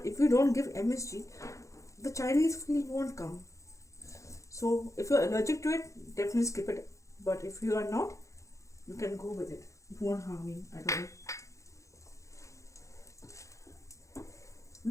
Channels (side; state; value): right; late; 0.15 ms